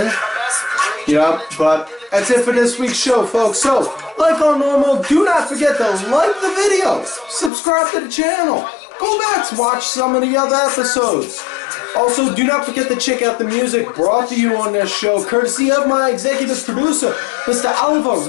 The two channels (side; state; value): right; drops out; at 7.5 s